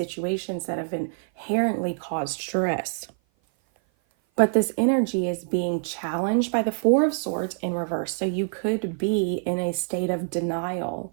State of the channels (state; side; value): silent; left; 56 dB below the other